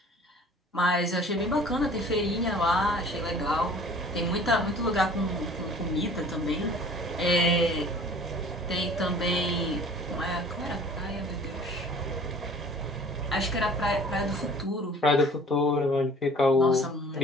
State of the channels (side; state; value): both; normal; correlation 0.48